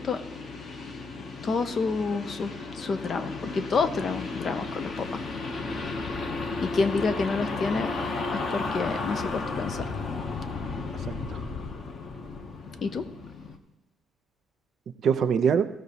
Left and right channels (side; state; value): both; normal; correlation 0.75